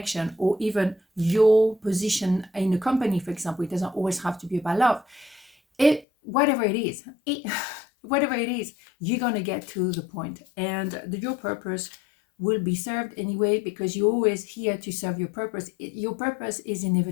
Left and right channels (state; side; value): drops out; right; at 6.1 s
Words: or even your position in a company, for example, it doesn't always have to be about love. Whatever it is, you're gonna get to the point, and your purpose will be served anyway, because you're always here to serve your purpose. Your purpose is